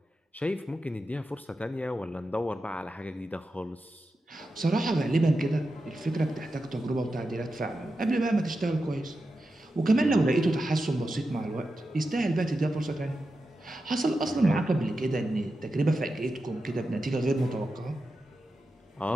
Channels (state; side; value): normal; both; correlation 0.90